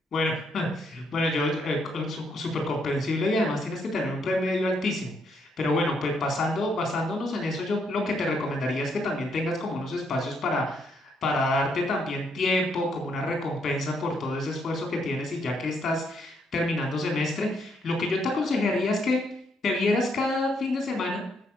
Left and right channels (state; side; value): normal; both; correlation 0.74